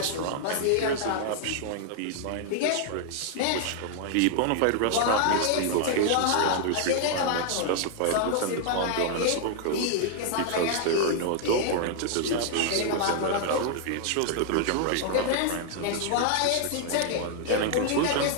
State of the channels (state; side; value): different; both; correlation 0.00